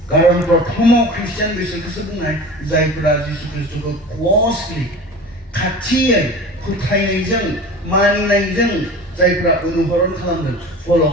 खारन प्रथमाव ख्रिस्टियान बिसोरखौसो बुंनाय जायफोरा जिसु ख्रिस्ट'खौ क्ल'सलि, खाथियै फोथायनायजों, मानिनायजों जायफ्रा अनुसरण खालामदों, फल'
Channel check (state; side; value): normal; both; correlation 0.36